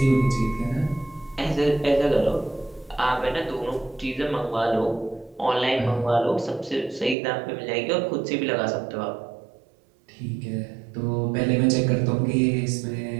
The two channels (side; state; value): left; drops out; at 7.2 s